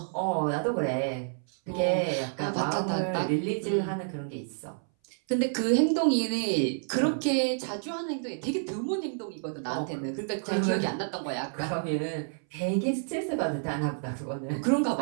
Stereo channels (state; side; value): silent; left; 58 dB below the other